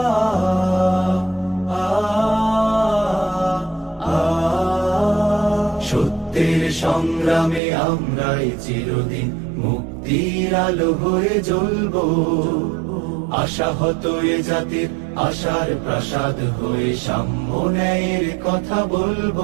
সত্যের সংগ্রামে আমরাই চিরদিন মুক্তির আলো হয়ে জ্বলবো। আশাহত এ জাতির আশার প্রাসাদ হয়ে সাম্য ন্যায়ের কথা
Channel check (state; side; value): drops out; left; at 7.6 s